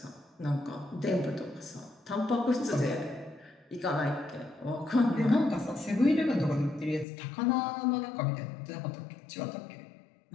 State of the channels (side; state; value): right; drops out; at 7.1 s